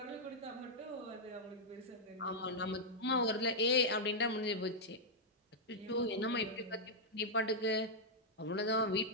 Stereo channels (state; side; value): normal; both; correlation -0.06